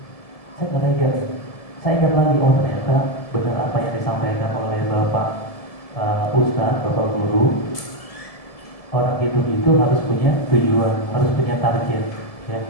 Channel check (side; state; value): right; late; 1.7 ms